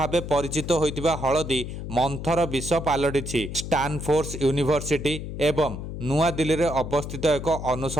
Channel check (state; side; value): noise; left; hum, 7 dB below the sound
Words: परिचित होइतिबा हलदी मंथर विष पालटिछि। स्टानफोर्ड यूनिवर्सिटी एवं नुआ दिल्ली रे अवस्थित एक